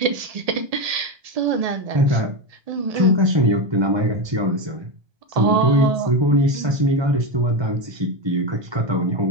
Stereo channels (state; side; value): late; left; 1.2 ms